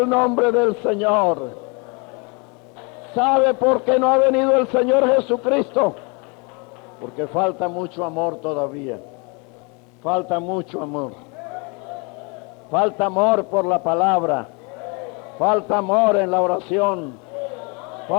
nombre del Señor. ¿Sabe por qué no ha venido el Señor Jesucristo? Porque falta mucho amor todavía. Falta mucho amor. Falta amor por la palabra. Falta amor en la oración.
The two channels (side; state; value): right; quieter; 32.1 dB